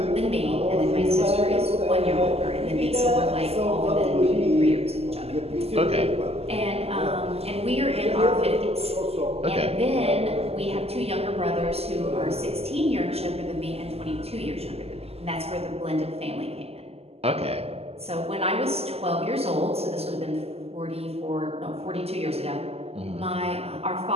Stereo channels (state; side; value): late; left; 0.29 ms